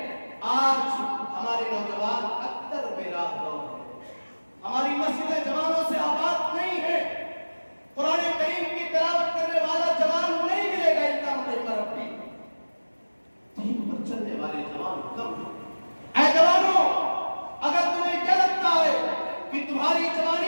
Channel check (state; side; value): inverted; both; correlation -1.00